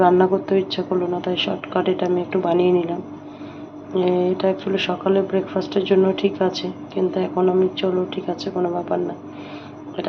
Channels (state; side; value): identical; both; correlation 1.00